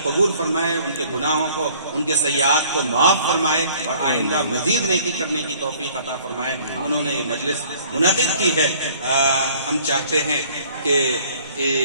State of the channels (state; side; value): inverted; both; correlation -0.55